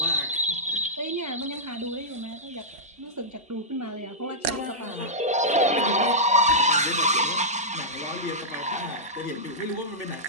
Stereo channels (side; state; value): both; normal; correlation -0.11